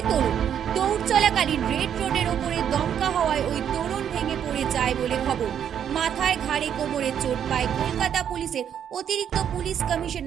তরুণ। দৌড় চলাকালীন রেড রোডের ওপরে দমকা হওয়ায় ওই তরুণ ভেঙে পড়ে যায় বলে খবর। মাথায় ঘাড়ে কোমরে চোট পায় কলকাতা পুলিশের অতিরিক্ত পুলিশ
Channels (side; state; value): left; quieter; 9.0 dB